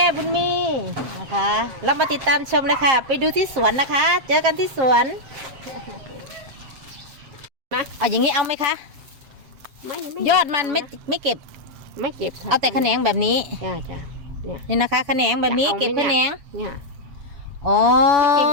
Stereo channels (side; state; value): left; late; 7.5 ms